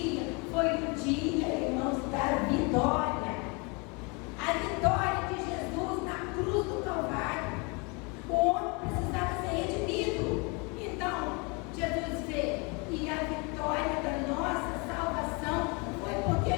foi o dia, irmãos, da vitória. A vitória de Jesus na cruz do Calvário. O homem precisava ser redimido. Então, Jesus veio. E a vitória da nossa salvação foi porque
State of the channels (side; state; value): right; quieter; 30.6 dB